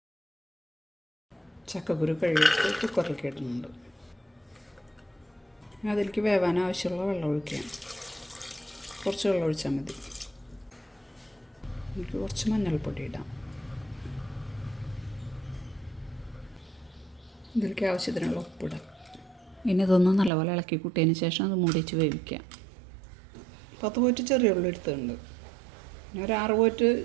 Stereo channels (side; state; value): left; drops out; at 20.3 s